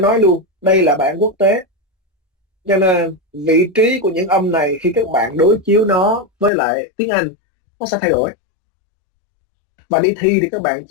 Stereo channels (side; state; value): right; drops out; at 6.5 s